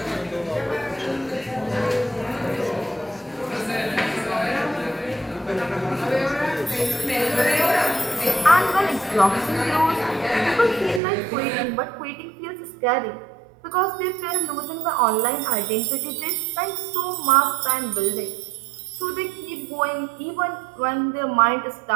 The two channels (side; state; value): left; drops out; at 11.0 s